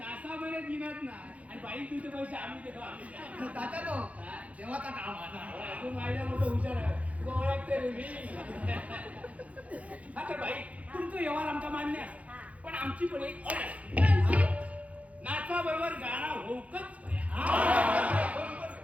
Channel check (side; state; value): left; late; 0.066 ms